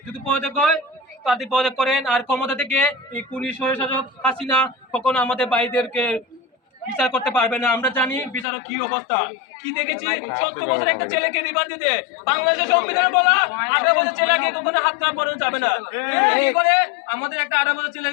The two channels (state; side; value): drops out; right; at 8.5 s